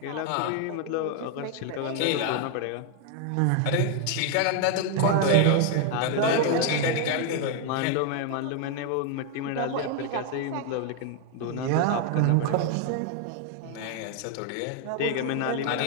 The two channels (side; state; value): both; different; correlation 0.01